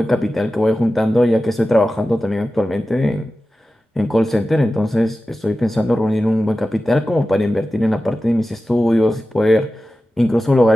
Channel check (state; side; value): normal; both; correlation 0.94